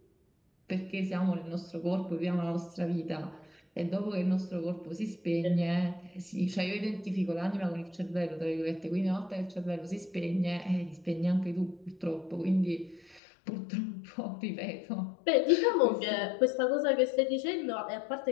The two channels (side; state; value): right; drops out; at 13.2 s